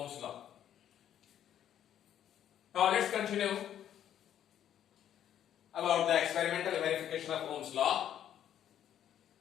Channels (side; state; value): right; quieter; 10.4 dB